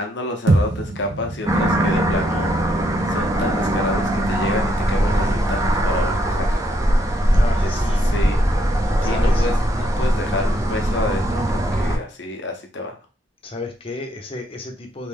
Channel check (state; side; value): normal; both; correlation 0.74